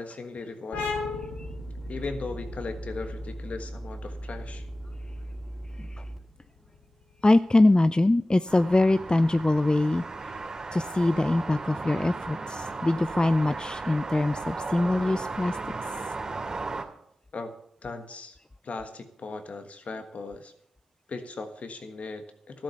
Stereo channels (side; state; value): both; normal; correlation 0.97